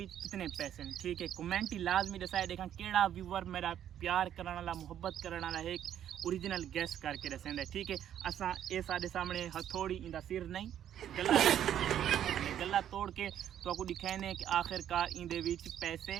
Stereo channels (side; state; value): left; quieter; 10.4 dB